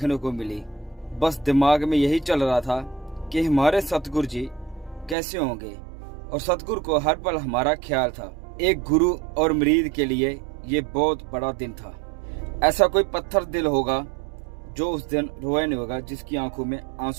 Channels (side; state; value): left; drops out; at 5.2 s